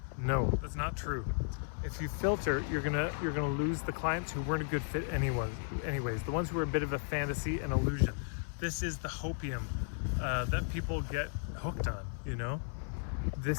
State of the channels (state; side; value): silent; right; 55 dB below the other